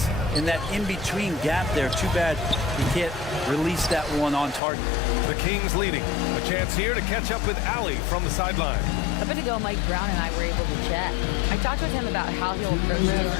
in that in-between gap there. Too bad he can't release that one on target. The Kings leading. A chance here to catch up with Allie from the sideline. A bit ago, Mike Brown and I were able to chat. I talked with him about how he'll approach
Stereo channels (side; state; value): right; drops out; at 4.6 s